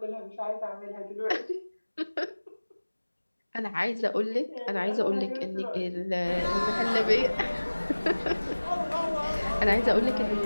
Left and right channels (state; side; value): inverted; both; correlation -1.00